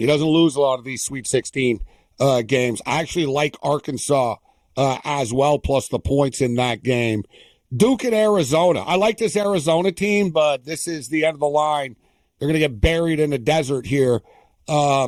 doesn't lose a lot of these Sweet 16 games. I actually like Arkansas as well, plus the points in that game. Duke and Arizona. I like this Arizona team, but this is the end of the line. They're going to get buried in the desert here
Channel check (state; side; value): identical; both; correlation 1.00